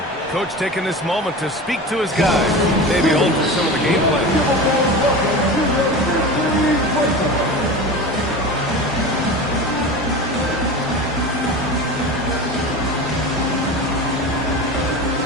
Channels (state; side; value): normal; both; correlation 0.30